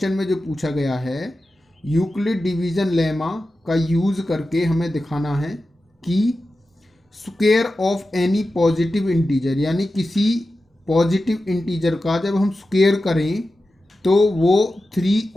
में जो पूछा गया है, Euclid division lemma का use करके हमें दिखाना है कि square of any positive integer, यानी किसी पॉजिटिव इंटीजर का जब हम स्क्वायर करें तो वो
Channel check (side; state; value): both; normal; correlation 0.93